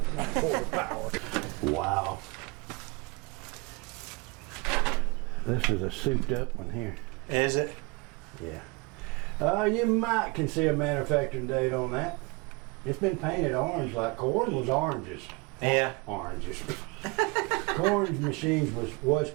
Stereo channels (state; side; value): quieter; left; 28.1 dB